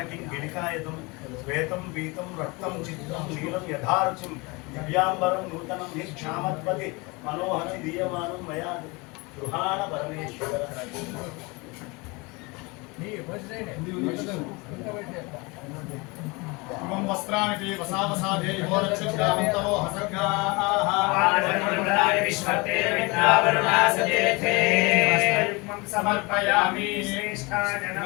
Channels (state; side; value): quieter; right; 26.6 dB